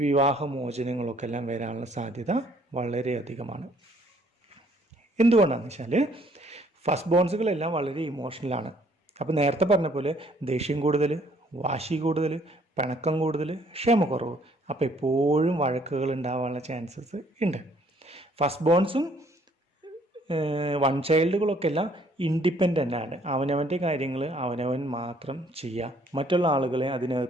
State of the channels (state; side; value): normal; both; correlation 0.63